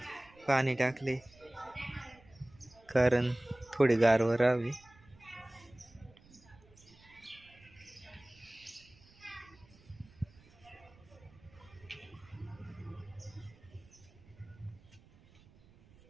पाणी टाकले कारण थोडी गारवा राहावी.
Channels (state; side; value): noise; right; rumble, 26 dB below the sound